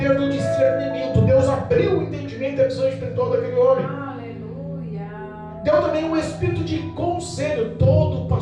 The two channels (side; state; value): both; identical; correlation 1.00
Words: do discernimento. Deus abriu o entendimento e a visão espiritual daquele homem. Aleluia. Deu também um espírito de conselho. Todo